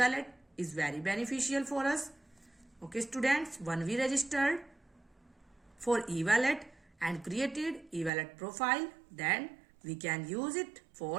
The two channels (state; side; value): drops out; left; at 8.1 s